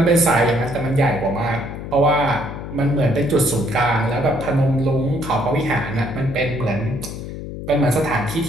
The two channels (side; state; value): left; noise; hum, 9 dB below the sound